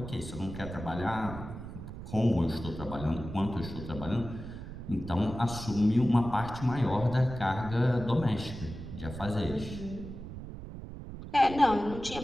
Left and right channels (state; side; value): noise; right; rumble, 10 dB below the sound